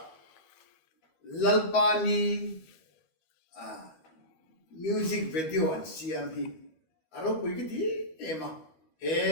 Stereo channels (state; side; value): late; right; 13 ms